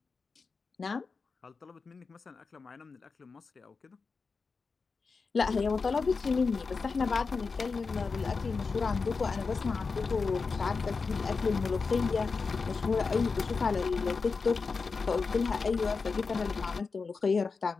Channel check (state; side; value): quieter; right; 4.6 dB